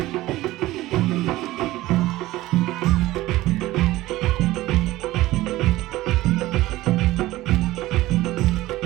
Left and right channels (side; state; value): left; quieter; 17.2 dB